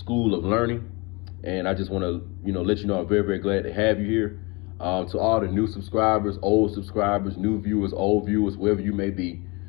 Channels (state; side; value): quieter; right; 27.3 dB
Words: of Learning. And I just want to, let you know I'm very, very glad to have you here. To all the new subscribers, old subscribers, new viewers, old viewers, wherever you may be,